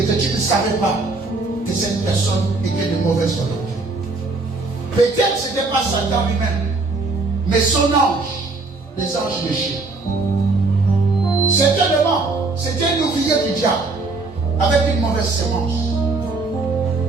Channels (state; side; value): quieter; left; 3.6 dB